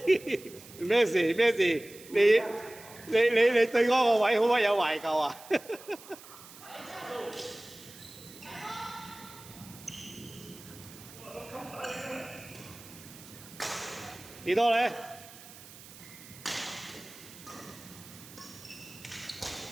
咩事咩事？你對嗰個位好乜有懷舊啊？幾多咧？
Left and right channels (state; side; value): noise; right; hiss, 18 dB below the sound